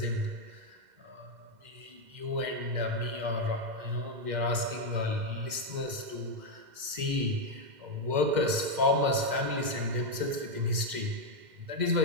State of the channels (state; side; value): late; left; 2.1 ms